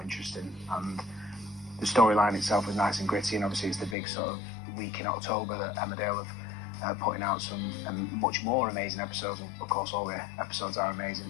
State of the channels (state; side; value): drops out; right; at 4.0 s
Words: interesting, and the storyline itself was nice and gritty, and obviously it's the big sort of week in October that Emmerdale have putting out some much more amazing episodes. Of course, all the episodes are